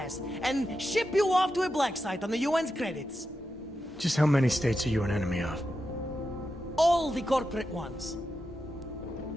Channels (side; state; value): both; normal; correlation 0.88